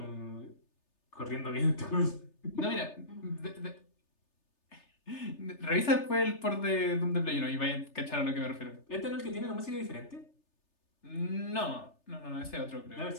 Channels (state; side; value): late; right; 3.3 ms